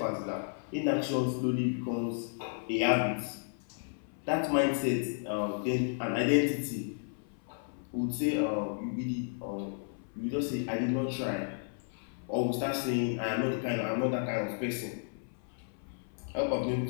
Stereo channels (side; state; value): right; silent; 56 dB below the other